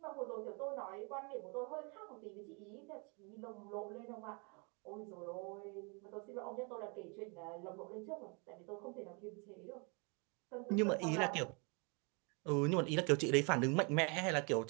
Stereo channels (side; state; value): left; quieter; 33.4 dB